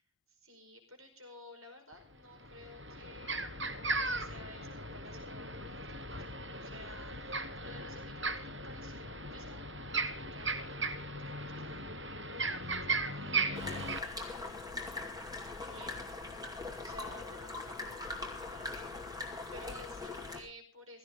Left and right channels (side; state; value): both; normal; correlation 0.06